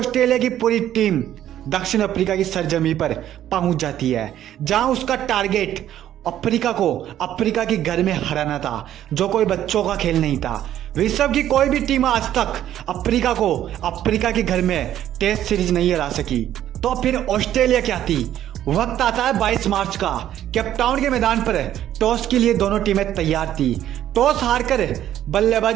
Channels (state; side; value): quieter; left; 11.7 dB